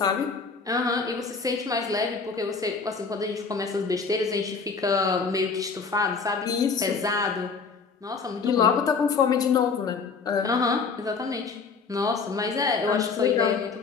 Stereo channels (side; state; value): right; quieter; 5.0 dB